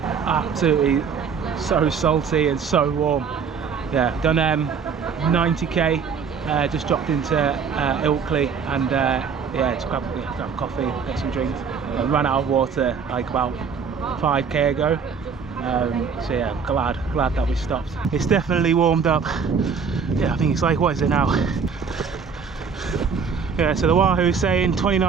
Absolutely so salty and so warm. Yeah, done 90k, just dropped into Ilkley and yeah, just grab coffee, get some drinks. Ran out of water like about 5k ago. So yeah, glad that we stopped. It's definitely warmed up. Yeah, I think it's like, what is it now? Yeah, so the Wahoo's saying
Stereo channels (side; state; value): left; quieter; 6.0 dB